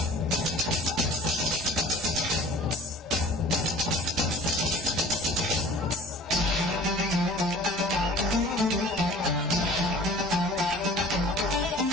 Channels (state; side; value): normal; both; correlation 0.46